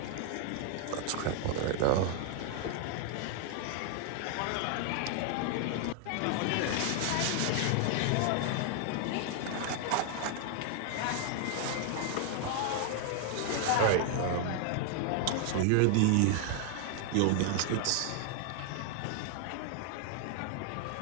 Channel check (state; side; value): different; both; correlation 0.00